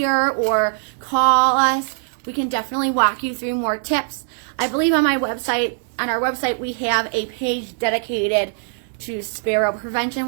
or call us. We can definitely walk you through more tips. I believe on our website, we have a page dedicated to sparrow prevention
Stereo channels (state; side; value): silent; left; digital silence